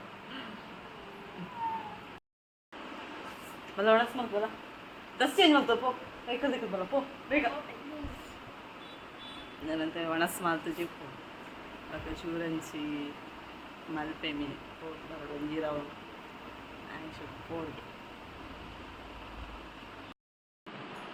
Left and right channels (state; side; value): identical; both; correlation 1.00